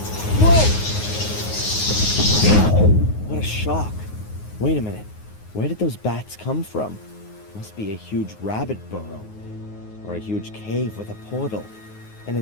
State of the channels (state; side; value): late; right; 9.5 ms